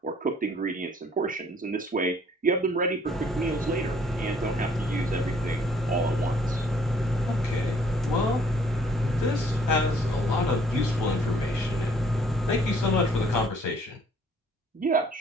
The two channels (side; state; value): both; normal; correlation 0.61